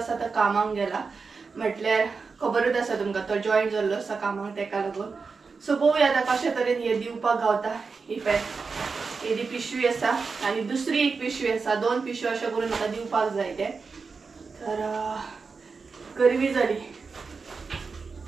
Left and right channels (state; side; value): quieter; left; 4.8 dB